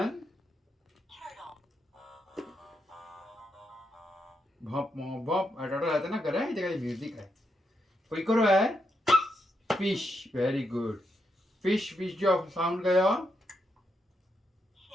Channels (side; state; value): both; normal; correlation 0.81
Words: Bop. Turtle आता ना करा है जगह music है. कोई करो है. Fish. Very good. Fish जो साउंड गया.